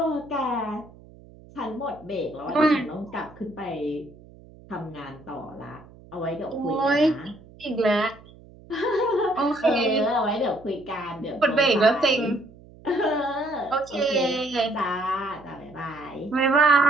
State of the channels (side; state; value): right; noise; hum, 22 dB below the sound